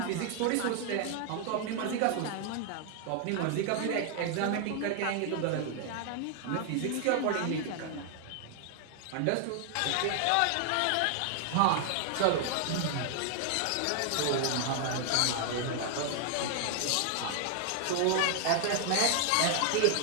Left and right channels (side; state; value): both; different; correlation 0.00